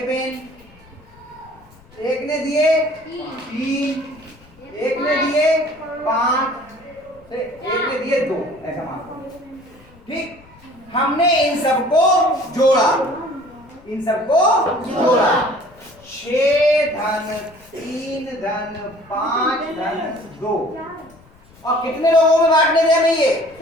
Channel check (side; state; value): left; noise; rumble, 26 dB below the sound